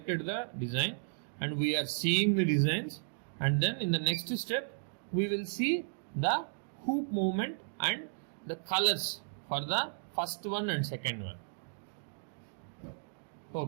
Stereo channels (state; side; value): silent; left; digital silence